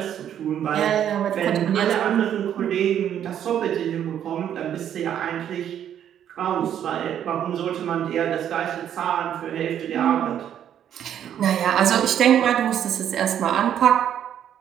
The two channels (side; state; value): left; quieter; 9.9 dB